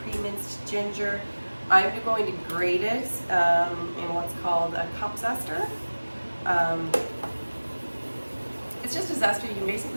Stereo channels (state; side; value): inverted; both; correlation -1.00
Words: pre-minced ginger. I'm going to grate it in what's called a cup zester. It's just a zester you can